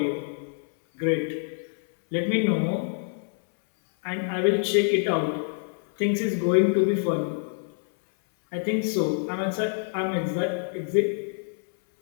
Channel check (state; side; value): silent; right; 61 dB below the other